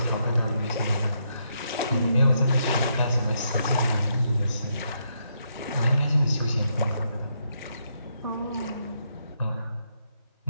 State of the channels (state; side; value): inverted; both; correlation -0.78